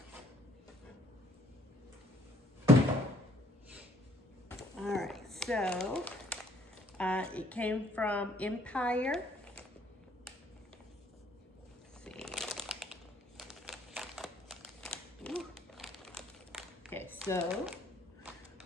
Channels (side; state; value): both; normal; correlation 0.63